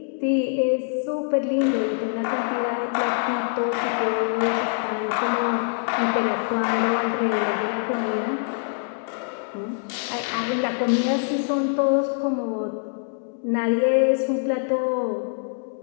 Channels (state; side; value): silent; right; digital silence